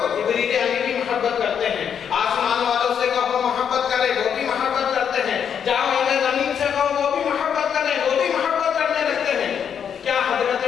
جبریل امین بھی محبت کرتے ہیں، آسمان والوں سے کہو محبت کرے، وہ بھی محبت کرتے ہیں، جاؤ اہل زمین سے کہو وہ بھی محبت کریں، وہ بھی محبت کرنے لگتے ہیں۔ کیا حضرت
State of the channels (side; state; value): right; quieter; 7.9 dB